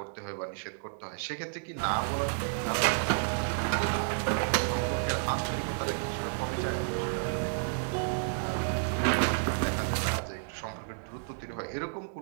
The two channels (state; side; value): silent; left; digital silence